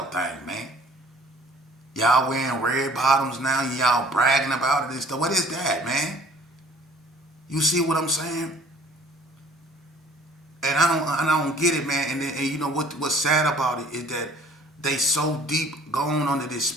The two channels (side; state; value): both; normal; correlation 0.53